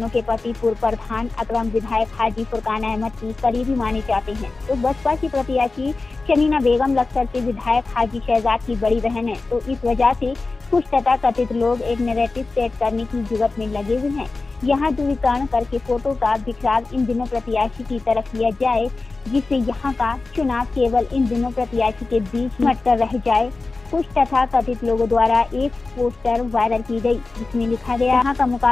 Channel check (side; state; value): right; quieter; 3.6 dB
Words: के पति पूर्व प्रधान अकरम विधायक हाजी फुरकान अहमद की करीबी माने जाते हैं, तो बसपा की प्रत्याशी समीना बेगम लखसर से विधायक हाजी शहजाद की बड़ी बहन है। तो इस वजह से कुछ तथा कथित लोग एक नैरेटिव सेट करने की जुगत में लगे हुए हैं। यहाँ दूरीकरण करके फोटो का बिखराव इन दिनों प्रत्याशी की तरफ किया जाए, जिससे यहाँ का चुनाव केवल इन दिनों प्रत्याशी के बीच मटकर रह जाए। कुछ तथा कथित लोगों द्वारा एक पोस्टर वायरल की गई, जिसमें लिखा गया यहाँ का